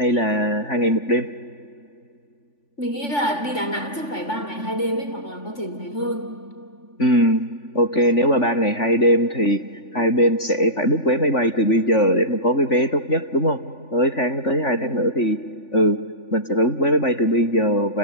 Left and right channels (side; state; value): right; late; 3.5 ms